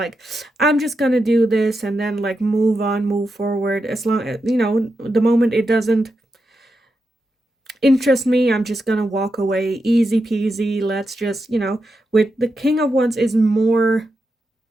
I'm just gonna do this and then like move on, move forward. As long as, you know, the moment it doesn't interest me, I'm just gonna walk away, easy peasy. Let's just, you know, with the King of Wands is more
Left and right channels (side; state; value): both; normal; correlation 0.87